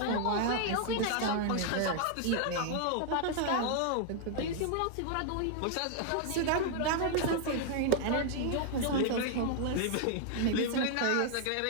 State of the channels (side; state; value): both; different; correlation 0.00